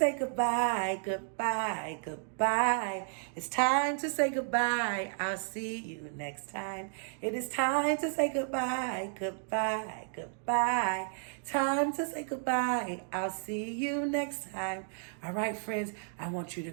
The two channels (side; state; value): left; silent; digital silence